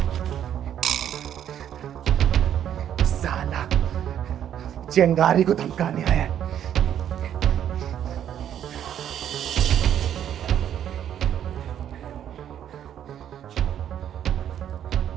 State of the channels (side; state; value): left; quieter; 10.0 dB